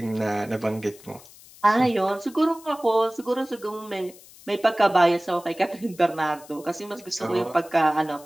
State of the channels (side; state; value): left; noise; hiss, 22 dB below the sound